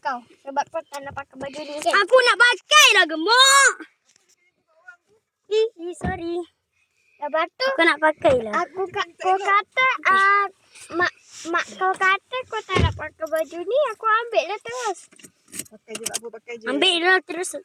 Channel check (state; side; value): identical; both; correlation 1.00